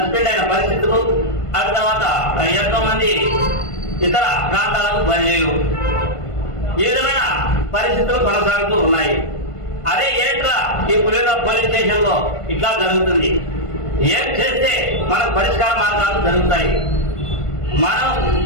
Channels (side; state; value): right; late; 1.5 ms